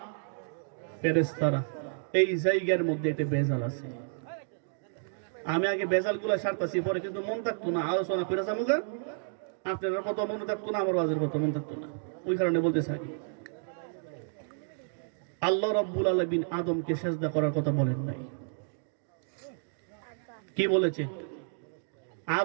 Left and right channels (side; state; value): left; silent; digital silence